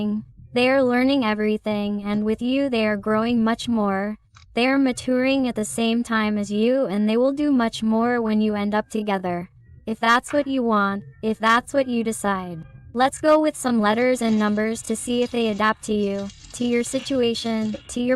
They are learning everything, and with you they are growing much more. They are maturing at the same time as you, and they will do much more when you end up together. If that's what you want, if that's what you decide. Let's go with some letters and numbers to see if they adapt to you, to your situation, to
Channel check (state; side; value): identical; both; correlation 1.00